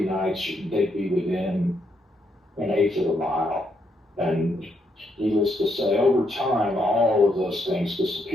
nights, they'd be within an eighth of a mile. And needless to say, over time, all of those things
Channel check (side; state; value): both; normal; correlation 0.77